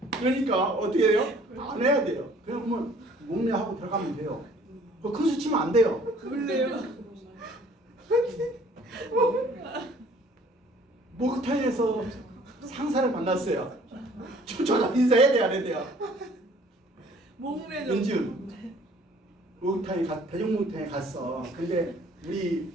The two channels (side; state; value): both; normal; correlation 0.55